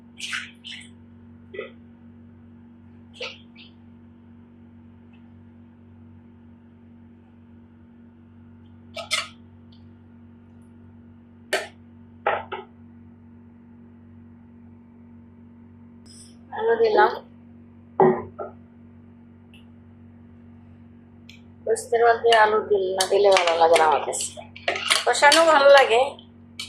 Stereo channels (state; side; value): identical; both; correlation 1.00